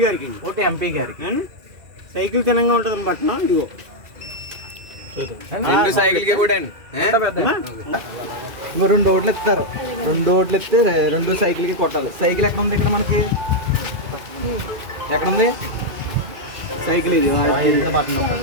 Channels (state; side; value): late; left; 2.4 ms